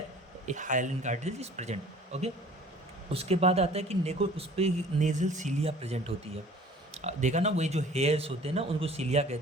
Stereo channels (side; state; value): both; normal; correlation 0.49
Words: a hyaline cartilage is present. Okay, उसके बाद आता है कि नेको उस पर nasal cilia present होती है. देखा ना, वही जो हेयर्स होते हैं ना उनको सीलिया